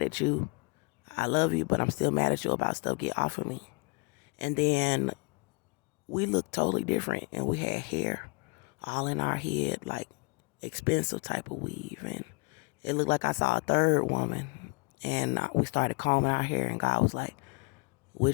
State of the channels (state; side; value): quieter; right; 31.8 dB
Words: at you. I love you, but I'm still mad at you about stuff. Get off of me. And then we looked totally different, and we had hair all in our head, like expensive type of weave, and it looked like I saw a third woman. And we started combing our hair, and God was like,